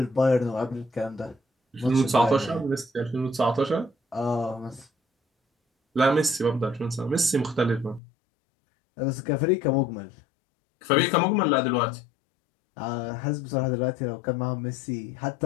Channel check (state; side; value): drops out; right; at 8.0 s